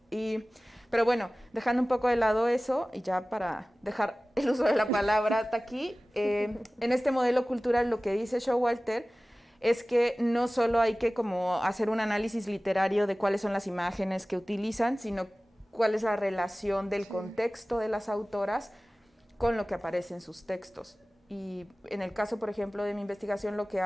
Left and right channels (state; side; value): normal; both; correlation 0.98